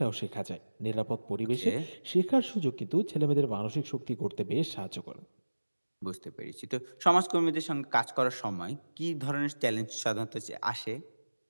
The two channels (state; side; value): inverted; both; correlation -1.00